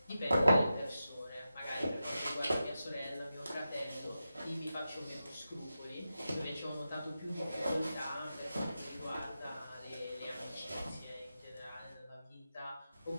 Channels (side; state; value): both; inverted; correlation -0.91